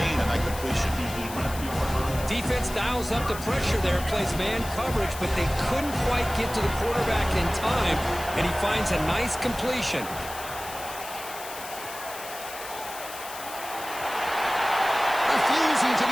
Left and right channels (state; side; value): noise; left; hiss, 12 dB below the sound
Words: on that completion. Defense dials up the pressure there, plays man coverage, but they couldn't quite get to the quarterback in time, and he finds a nice completion. Refusing to